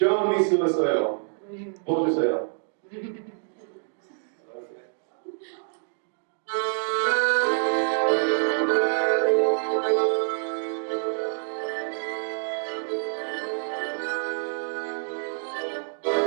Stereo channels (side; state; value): left; silent; 60 dB below the other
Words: 미소 있어요. 보여주세요.